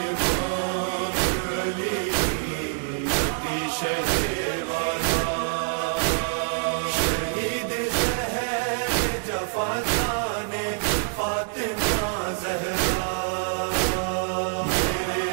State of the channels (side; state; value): left; silent; digital silence